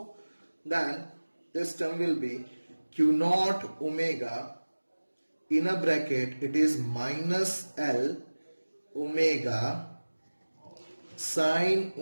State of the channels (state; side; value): inverted; both; correlation -1.00